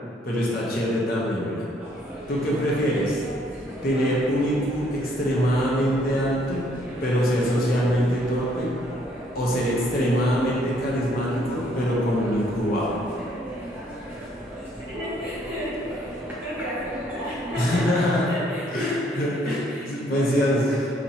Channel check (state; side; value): normal; both; correlation 0.66